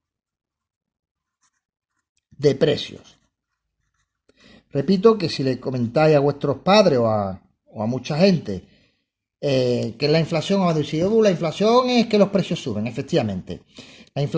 de precios. Repito que si le comentáis a vuestros padres o a mucha gente que es la inflación, os va a decir, la inflación es que los precios suben, efectivamente. La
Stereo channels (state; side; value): identical; both; correlation 1.00